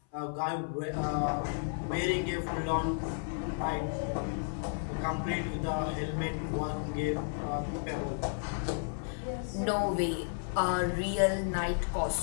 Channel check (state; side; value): silent; right; 56 dB below the other